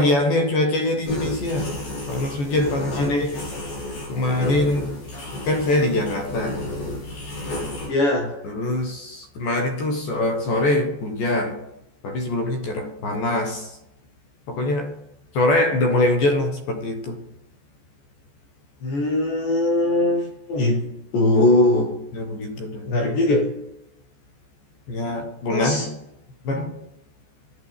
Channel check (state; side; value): late; right; 14 ms